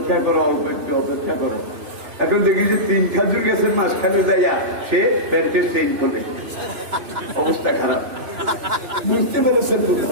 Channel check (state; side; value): late; left; 3.0 ms